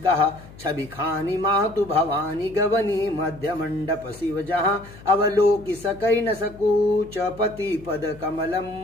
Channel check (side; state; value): left; noise; hum, 19 dB below the sound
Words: छवि खानी मातु भवानी गवनी मध्य मंडप शिव जहाँ अवलोकि सकई न सकूच पति पद कमलम